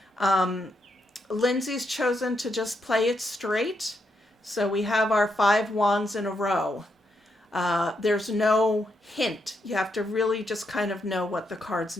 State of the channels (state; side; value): normal; both; correlation 0.80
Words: Lindsay's chosen to just play it straight. So we have our 5 wands in a row. There's no hint. You have to really just kind of know what the cards